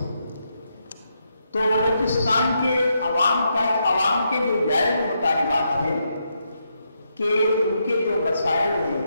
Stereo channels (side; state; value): both; inverted; correlation -0.81